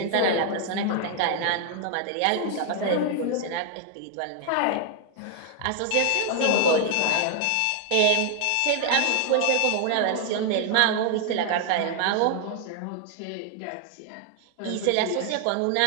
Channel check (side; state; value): both; different; correlation 0.00